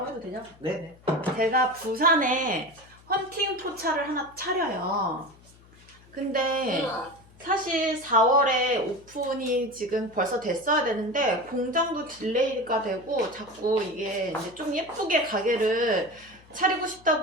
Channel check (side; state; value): left; noise; hum, 26 dB below the sound